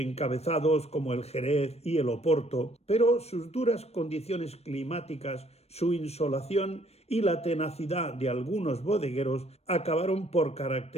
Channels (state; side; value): late; right; 0.31 ms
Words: como el Jerez y el Oporto, pero sus duras condiciones climáticas, su insolación y la tenacidad de algunos bodegueros acabaron por